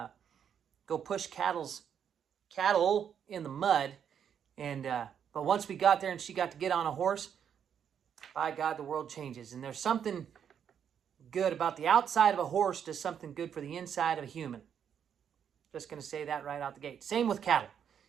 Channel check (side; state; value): left; quieter; 8.3 dB